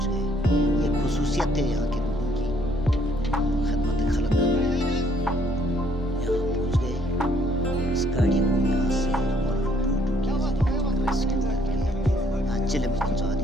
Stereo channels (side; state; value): both; normal; correlation 0.65